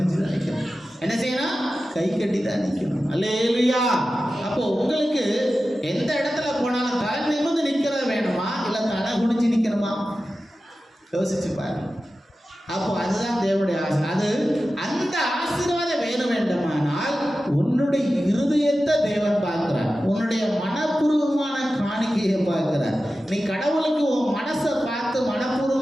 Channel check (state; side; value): normal; both; correlation 0.94